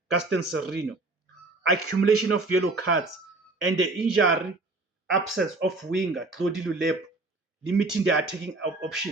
Gaston Sereno, accumulation of yellow cards, and the injury absence of winger Claude Lulepo, limiting their attacking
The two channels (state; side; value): quieter; left; 3.2 dB